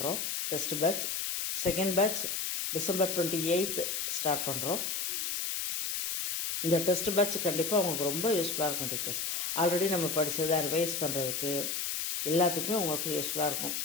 test batch. Second batch December 28 start பண்ணுறோம். இந்த டெஸ்ட் பேட்ச் கண்டிப்பாக உங்களுக்கு ரொம்ப யூஸ்ஃபுல்லாக இருக்கும். டீச்சர்ஸ் ஆல்ரெடி நம்ம படித்ததை ரிவைஸ் பண்ணுறதுக்கு எல்லாத்துக்குமே உங்களுக்கு யூஸ்ஃபுல்லாக இருக்கும்.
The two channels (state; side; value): noise; left; hiss, 1 dB below the sound